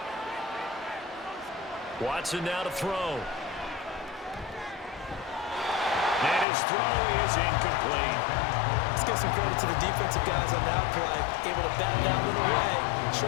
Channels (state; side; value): drops out; right; at 6.5 s